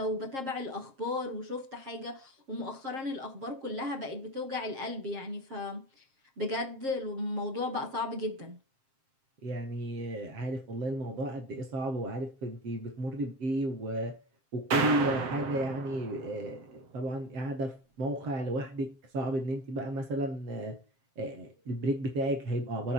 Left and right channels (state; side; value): late; left; 7.5 ms